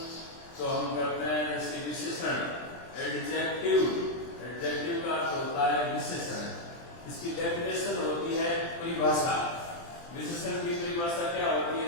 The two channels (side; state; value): right; late; 23 ms